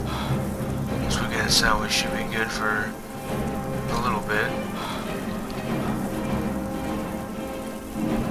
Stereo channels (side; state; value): both; identical; correlation 1.00